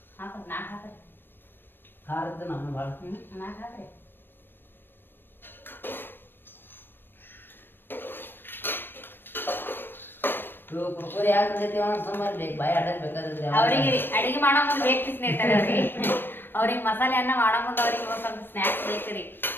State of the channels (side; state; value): right; late; 0.097 ms